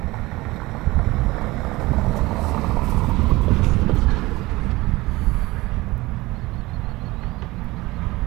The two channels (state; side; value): quieter; left; 20.4 dB